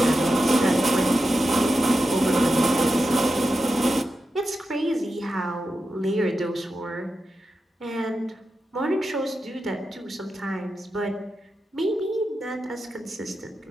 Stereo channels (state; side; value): normal; both; correlation 0.89